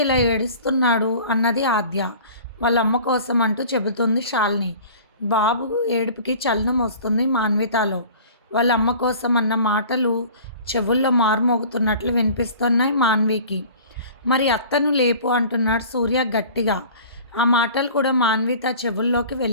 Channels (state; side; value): inverted; both; correlation -0.44